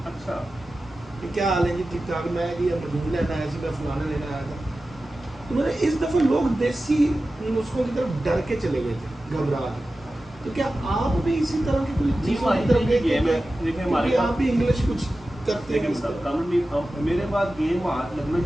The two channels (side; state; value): both; normal; correlation 0.94